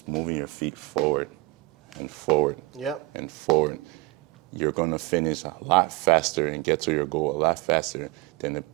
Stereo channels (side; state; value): left; quieter; 21.7 dB